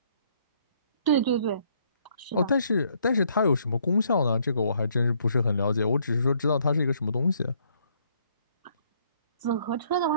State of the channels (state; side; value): inverted; both; correlation -0.67